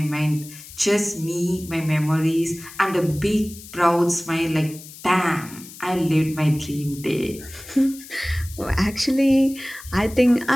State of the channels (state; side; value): noise; left; hiss, 17 dB below the sound